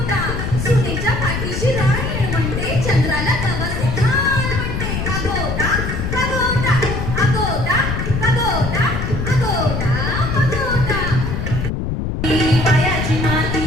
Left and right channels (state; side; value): noise; left; rumble, 3 dB below the sound